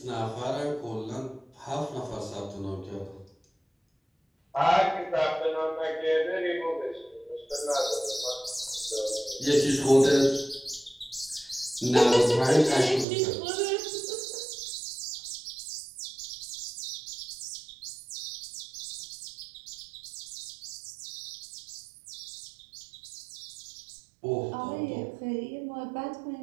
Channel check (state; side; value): drops out; left; at 13.1 s